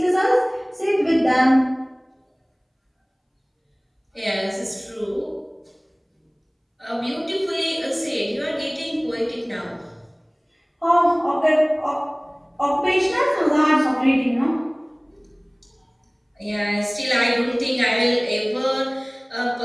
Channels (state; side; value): identical; both; correlation 1.00